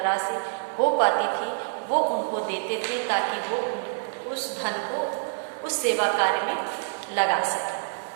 हो पाती थी, वो उनको देते थे, ताकि वो उस धन को उस सेवा कार्य में लगा सके।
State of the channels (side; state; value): left; silent; digital silence